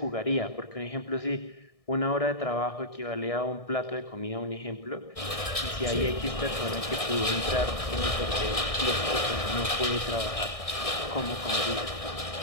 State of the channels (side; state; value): right; late; 1.6 ms